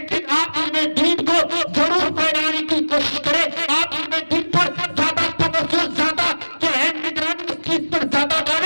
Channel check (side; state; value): both; inverted; correlation -1.00